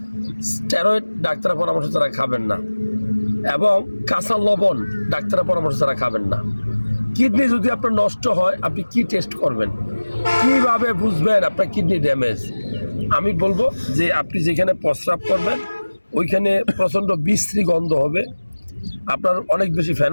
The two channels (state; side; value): inverted; both; correlation -1.00